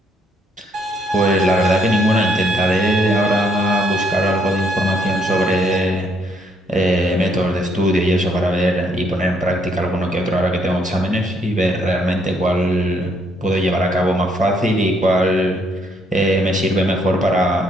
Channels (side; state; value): both; normal; correlation 0.70